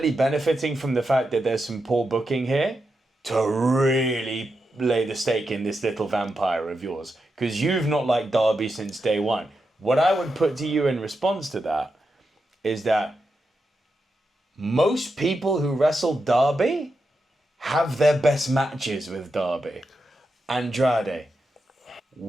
benefiting from the fact that there's some poor booking here to really lay the stake in this little vampire of yours. Because you've not liked Darby since day one. What I would put to you in response to that is that most people who wrestle Darby have their best matches with Darby. Andrade,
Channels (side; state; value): both; normal; correlation 0.87